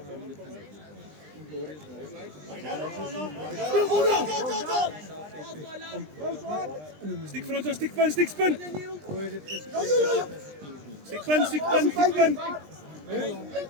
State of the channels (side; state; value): left; late; 20 ms